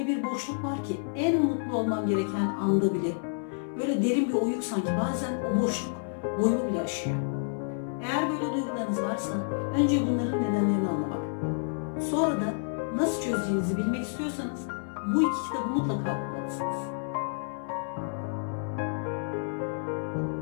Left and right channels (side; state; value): right; silent; 58 dB below the other